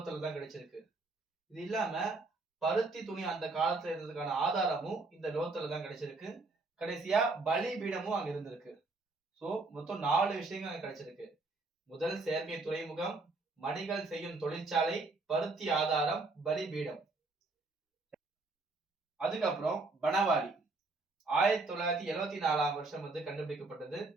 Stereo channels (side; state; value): left; quieter; 3.5 dB